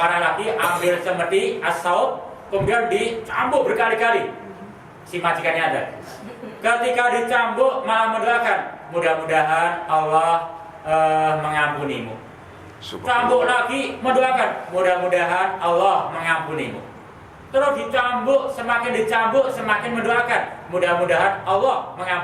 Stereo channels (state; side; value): identical; both; correlation 1.00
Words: lagi, ambil semedi as-saut, kemudian dicambuk berkali-kali si majikannya ada. Ketika dicambuk malah mendoakan, mudah-mudahan Allah mengampunimu. Cambuk lagi mendoakan, mudah-mudahan Allah mengampunimu. terus dicambuk, semakin mendoakan, mudah-mudahan Allah